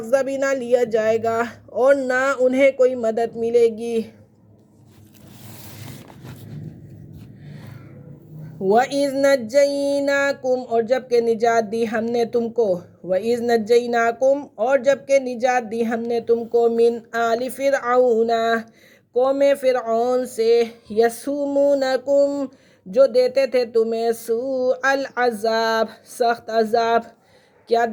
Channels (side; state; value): both; identical; correlation 1.00